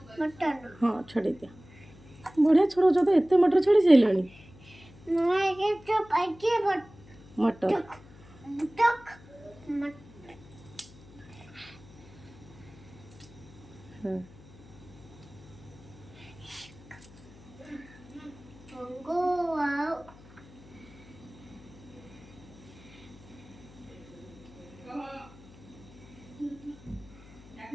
हाँ छड़े दिया बढ़िया छड़ौच तो एत मटर छड़ी सारे मटर हाँ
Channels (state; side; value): noise; left; hum, 21 dB below the sound